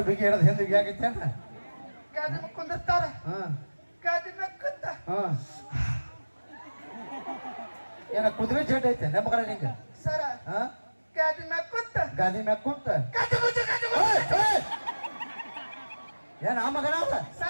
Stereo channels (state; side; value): inverted; both; correlation -1.00